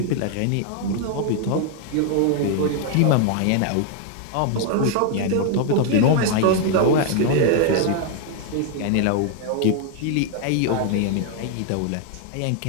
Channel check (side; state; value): both; different; correlation 0.00